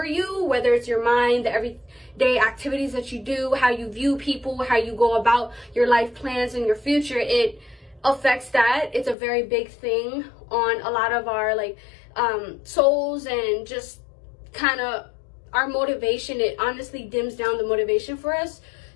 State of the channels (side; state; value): right; drops out; at 9.2 s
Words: you, whether it's your mind, the everyday activities that you do, how you view people, how you go about your life plans and your future. It affects that. It's a very big thing on a lot of our like souls, and just kind of our motivation. It honestly dims down the motivation for us.